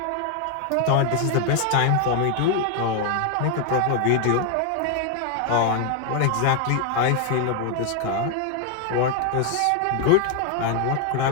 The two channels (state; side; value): different; both; correlation 0.01